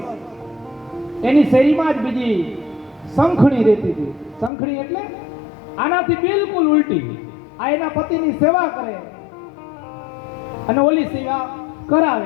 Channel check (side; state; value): right; drops out; at 4.5 s